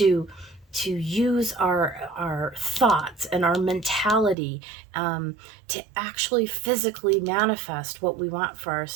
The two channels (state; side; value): drops out; left; at 4.4 s